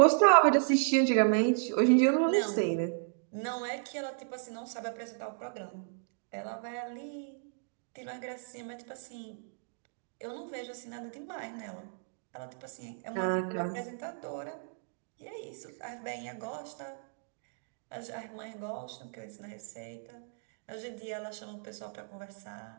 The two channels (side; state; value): left; silent; digital silence